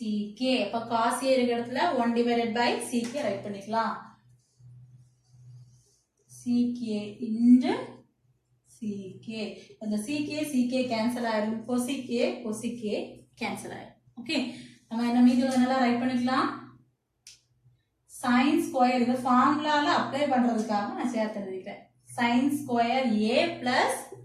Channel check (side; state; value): both; identical; correlation 1.00